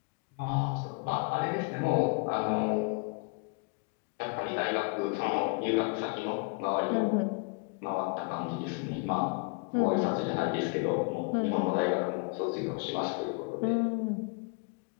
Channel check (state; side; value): quieter; right; 32.5 dB